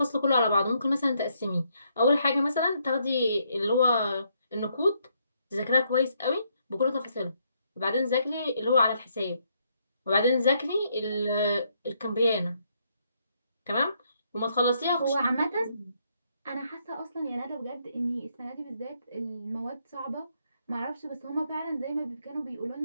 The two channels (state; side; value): inverted; both; correlation -0.74